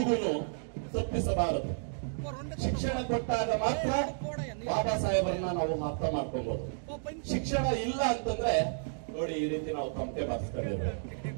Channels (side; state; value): left; silent; digital silence